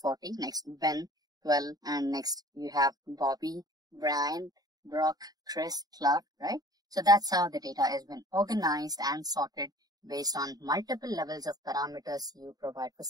Next Ben, 12, and next you have Bobby, Brian, Brock, Chris, Clark, right? So that's how the data has been organized and sorted based on multiple levels of parameters you provide for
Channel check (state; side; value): late; left; 0.18 ms